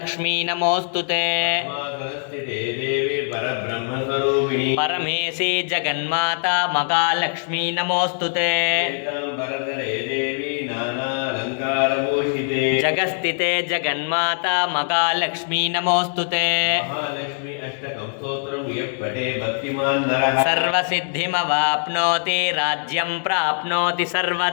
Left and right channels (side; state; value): right; silent; digital silence